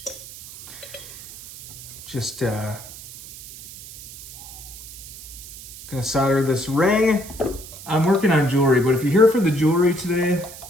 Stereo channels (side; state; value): right; noise; hiss, 15 dB below the sound